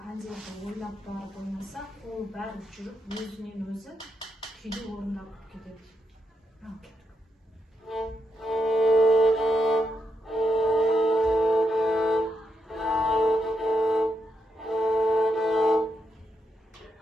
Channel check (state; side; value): normal; both; correlation 0.82